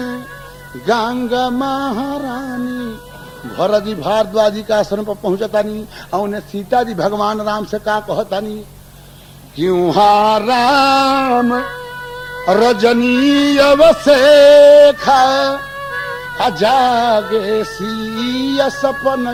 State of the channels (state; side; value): identical; both; correlation 1.00